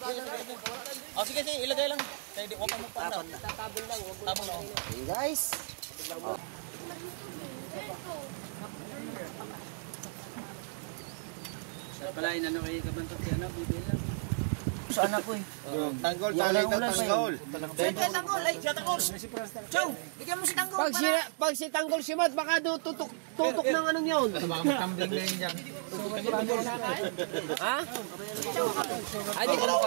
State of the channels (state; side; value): silent; left; 55 dB below the other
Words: Oh, sige, ilagay lang. Kaya di, huwag ka magpapal. Tabon lang. Tabon lang. Hey guys. Oh. Sa pala, inano kayo kabantot yan, bibil lang. Saan ako eh? Tanggol, tanggol. Tanggol, ay, siya Tanggol. Chow, bigyan mo si Tanggol. Pag si Tanggol si Mat, baka tutok ng anong yun. Baka magtambling na yun dyan. Ha? Ay, di ko na